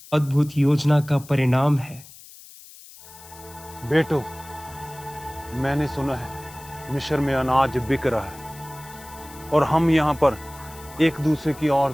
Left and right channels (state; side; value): noise; left; hiss, 20 dB below the sound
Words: अद्भुत योजना का परिणाम है। बेटो, मैंने सुना है मिस्र में अनाज बिक रहा है और हम यहाँ पर एक दूसरे की ओर